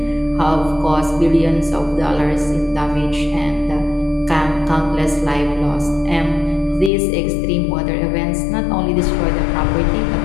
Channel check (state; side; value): drops out; right; at 6.9 s